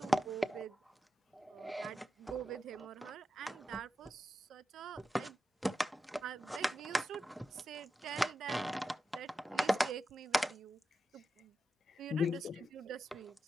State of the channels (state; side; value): normal; both; correlation 0.90